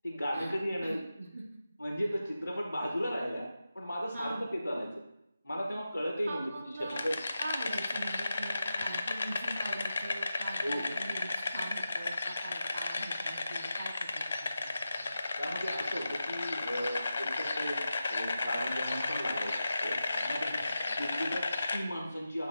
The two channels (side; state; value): both; inverted; correlation -0.91